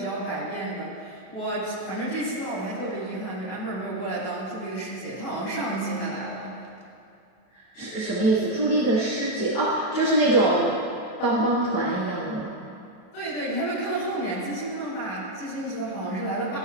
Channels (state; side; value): late; right; 32 ms